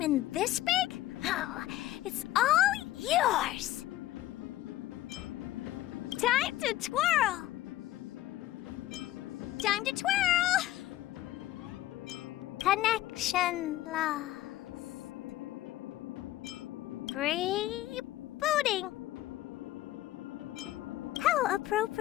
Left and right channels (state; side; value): quieter; right; 15.2 dB